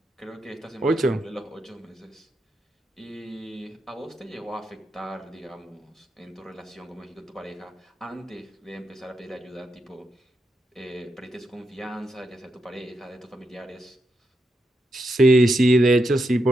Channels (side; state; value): both; normal; correlation 0.83